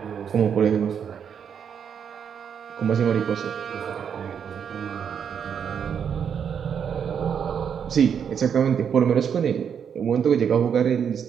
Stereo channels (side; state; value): left; quieter; 7.6 dB